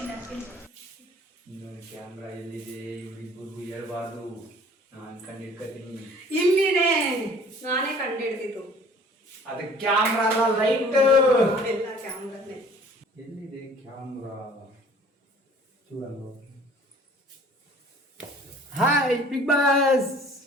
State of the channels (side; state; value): both; normal; correlation 0.51